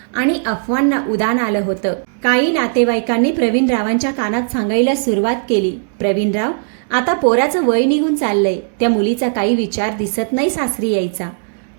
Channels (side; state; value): left; silent; digital silence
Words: आणि अफवांना उधाण आलं होतं. काही नातेवाईकांनी प्रवीणरावांच्या कानात सांगायला सुरुवात केली, प्रवीणराव, आता पोराचं वय निघून चाललंय, त्या मुलीचा काही विचार दिसत नाही सासरी यायचा.